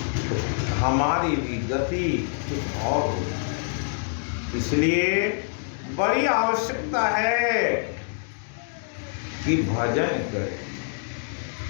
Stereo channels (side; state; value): right; silent; digital silence